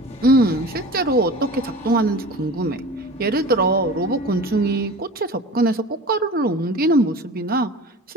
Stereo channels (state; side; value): normal; both; correlation 0.37